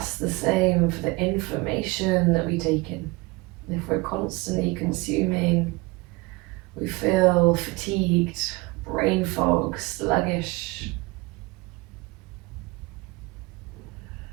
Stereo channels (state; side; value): quieter; left; 23.5 dB